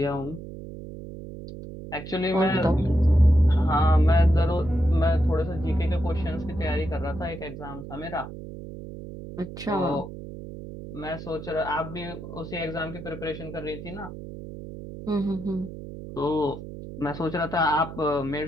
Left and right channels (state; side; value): noise; right; hum, 12 dB below the sound